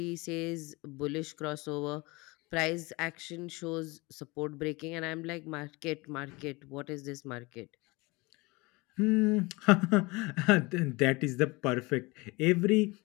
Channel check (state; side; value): quieter; right; 24.5 dB